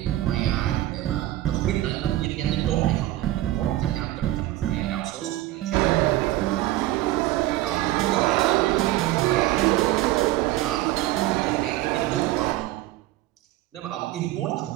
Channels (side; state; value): left; quieter; 15.9 dB